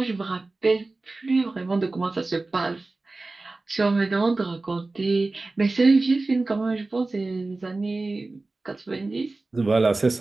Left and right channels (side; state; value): left; quieter; 3.3 dB